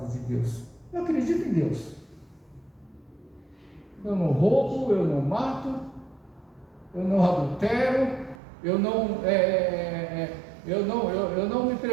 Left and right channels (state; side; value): drops out; left; at 8.3 s